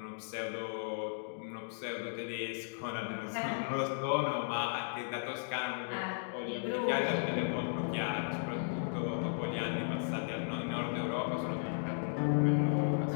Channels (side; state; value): right; silent; digital silence